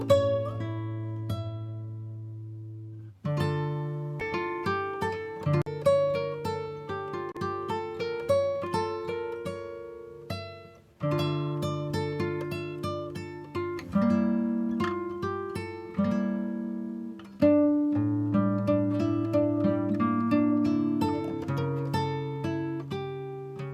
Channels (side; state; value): both; identical; correlation 1.00